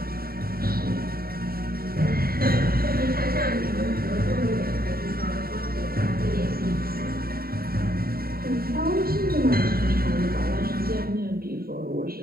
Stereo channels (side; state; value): left; late; 0.44 ms